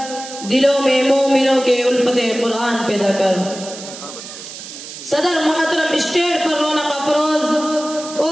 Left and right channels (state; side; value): noise; right; hiss, 12 dB below the sound